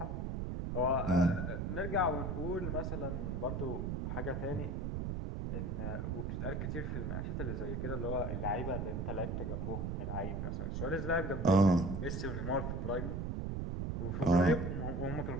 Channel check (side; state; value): right; noise; rumble, 2 dB below the sound